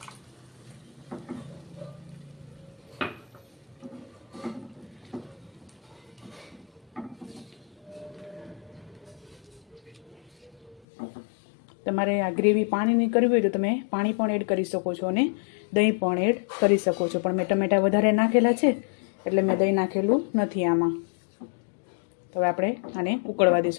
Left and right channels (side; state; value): right; drops out; at 10.8 s